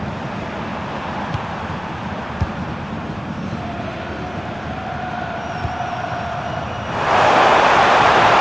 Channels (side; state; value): right; noise; rumble, 23 dB below the sound